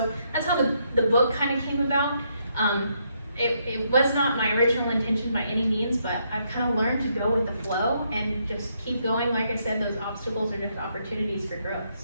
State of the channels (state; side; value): inverted; both; correlation -0.75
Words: that's how the book kind of came about. It was not my original intention by any means, but I've kind of learned to go with the flow and just keep going. Like I said, those obstacles are just opportunities for growth.